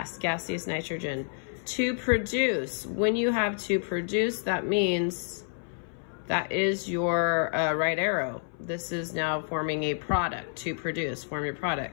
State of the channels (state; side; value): silent; right; 58 dB below the other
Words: gaseous nitrogen. To produce, when you have to produce, that means that is your right arrow. This is now forming a product. To produce, form your